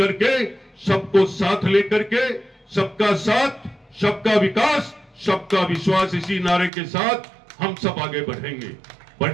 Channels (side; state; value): left; drops out; at 6.7 s